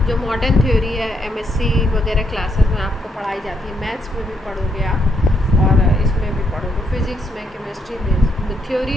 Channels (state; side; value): normal; both; correlation 0.76